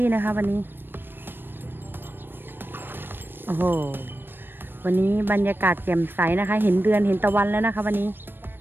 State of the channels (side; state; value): left; late; 0.097 ms